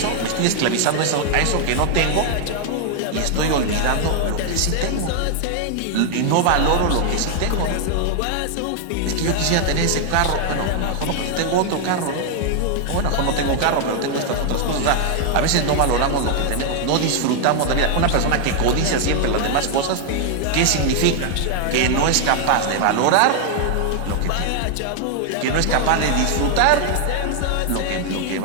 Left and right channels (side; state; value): both; different; correlation 0.00